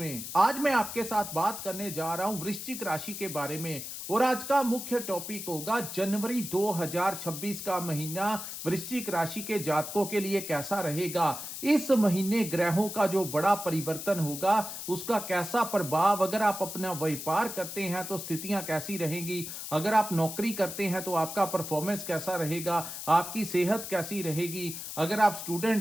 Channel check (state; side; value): noise; left; hiss, 8 dB below the sound